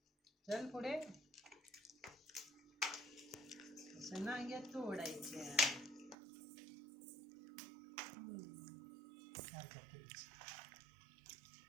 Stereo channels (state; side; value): drops out; left; at 6.2 s